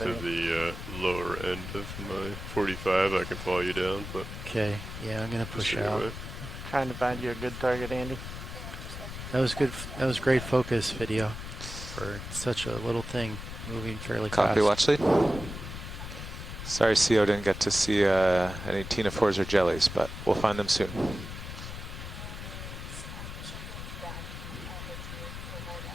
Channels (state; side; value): noise; left; rumble, 9 dB below the sound